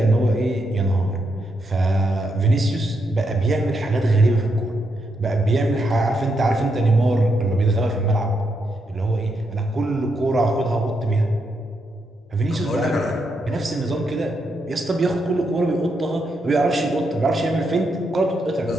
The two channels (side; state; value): both; normal; correlation 0.81